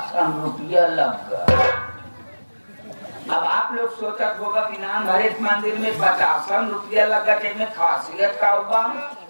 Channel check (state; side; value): inverted; both; correlation -1.00